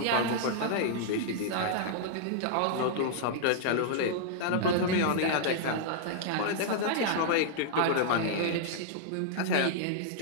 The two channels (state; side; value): different; both; correlation -0.01